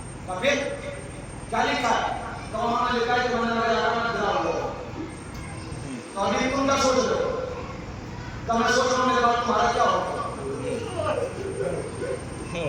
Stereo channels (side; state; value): both; identical; correlation 1.00